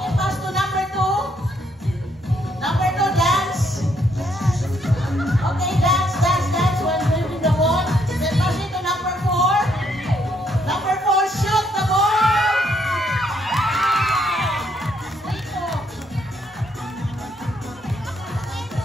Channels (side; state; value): both; normal; correlation 0.71